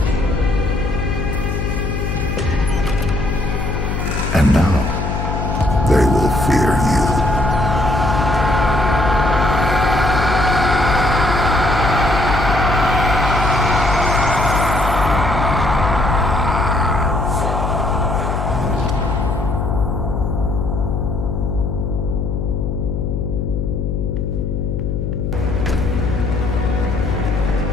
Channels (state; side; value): noise; left; hum, 2 dB below the sound